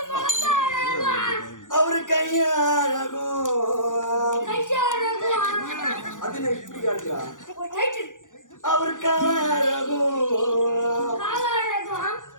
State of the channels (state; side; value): late; right; 0.87 ms